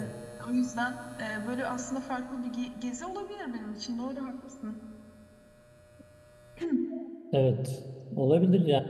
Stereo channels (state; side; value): identical; both; correlation 1.00